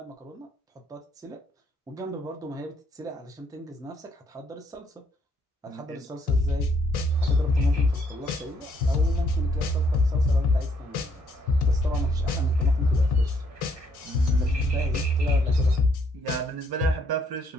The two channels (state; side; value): normal; both; correlation 0.70